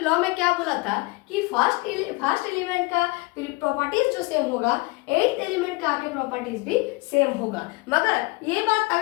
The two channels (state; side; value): quieter; right; 24.4 dB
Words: में क्या बोला था कि फर्स्ट एलिमेंट का प्रॉपर्टीज जो सेम होगा, 8th एलिमेंट का आके प्रॉपर्टीज भी सेम होगा। मगर ये बात